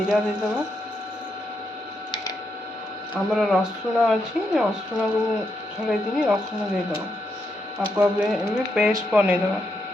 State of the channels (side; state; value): both; normal; correlation 0.81